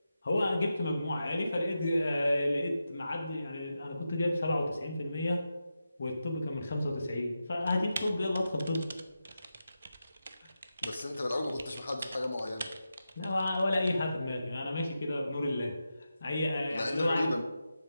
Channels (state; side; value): inverted; both; correlation -0.90